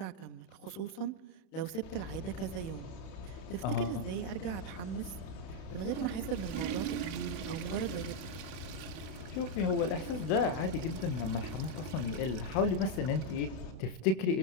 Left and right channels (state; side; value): late; right; 31 ms